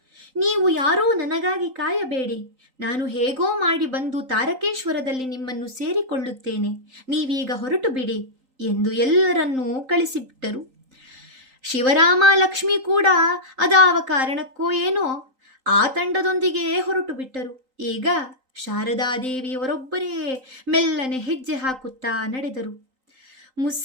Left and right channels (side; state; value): left; late; 3.8 ms